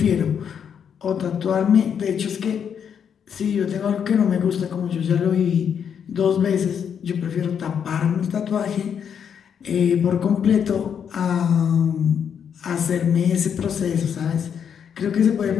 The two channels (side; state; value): right; quieter; 7.8 dB